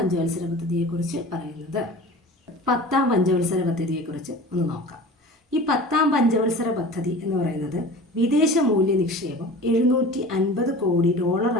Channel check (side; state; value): both; normal; correlation 0.38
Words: പദ്ധതിയെക്കുറിച്ച് പറയുന്നത്. 10ാം പഞ്ചവത്സര പദ്ധതിയെക്കുറിച്ച് ഒന്ന് നോക്കാം. ഈ 10ാം പഞ്ചവത്സര പദ്ധതി എന്ന് പറയുന്നത് വിദേശ മൂല്യ നിക്ഷേപം $750 കോടി